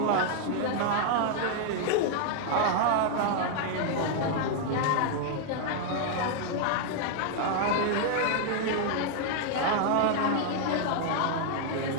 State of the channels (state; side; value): different; both; correlation 0.00